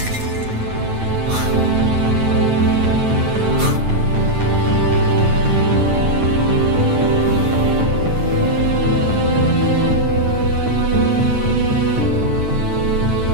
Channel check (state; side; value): late; left; 9.1 ms